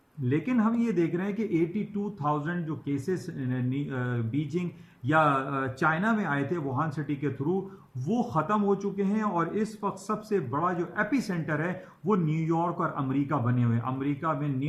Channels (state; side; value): identical; both; correlation 1.00